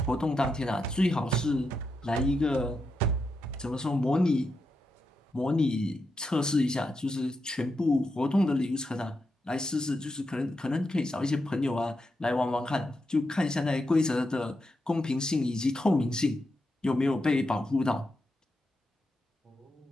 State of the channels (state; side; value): normal; both; correlation 0.85